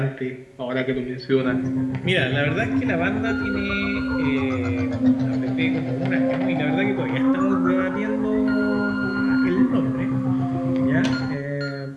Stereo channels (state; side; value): identical; both; correlation 1.00